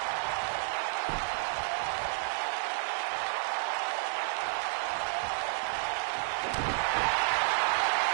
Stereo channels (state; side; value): silent; left; digital silence